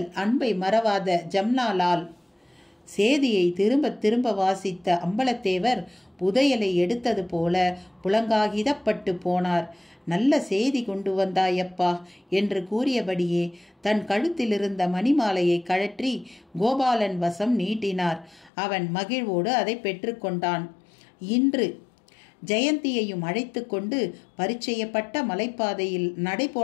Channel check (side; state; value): right; drops out; at 18.5 s